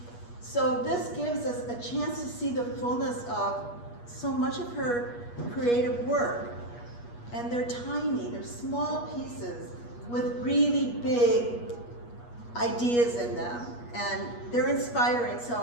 So this gives us a chance to see the fullness of so much of her creative work. And they're tiny, they're small pieces with really big ideas in them. And they're inspiring.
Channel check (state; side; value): late; right; 8.4 ms